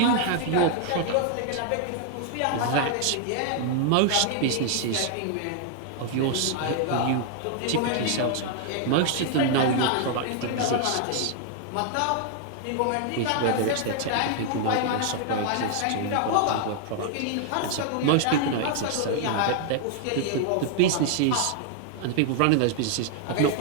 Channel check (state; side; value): different; both; correlation 0.00